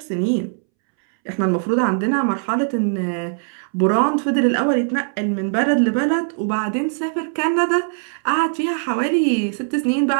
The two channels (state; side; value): silent; left; 66 dB below the other